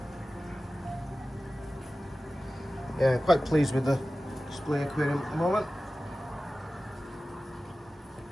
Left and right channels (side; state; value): both; normal; correlation 0.96